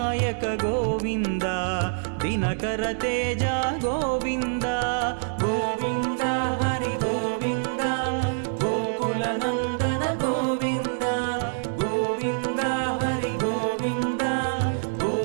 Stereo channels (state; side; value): silent; left; 59 dB below the other